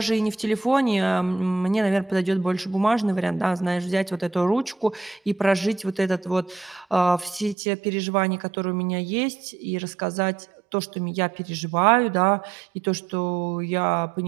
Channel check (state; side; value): drops out; left; at 7.6 s